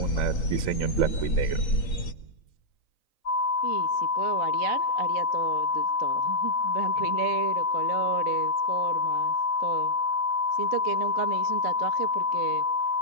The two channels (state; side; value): late; right; 3.9 ms